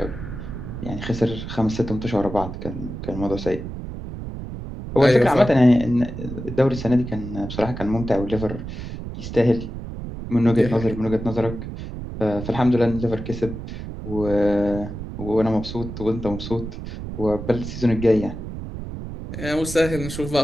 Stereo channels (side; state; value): right; noise; rumble, 8 dB below the sound